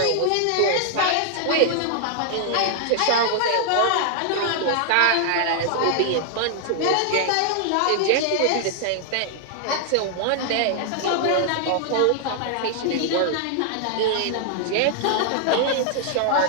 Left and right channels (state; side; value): different; both; correlation 0.00